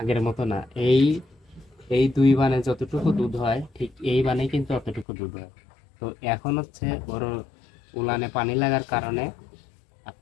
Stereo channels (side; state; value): right; drops out; at 5.1 s